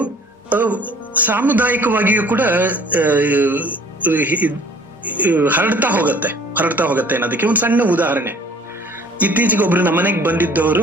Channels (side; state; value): both; normal; correlation 0.52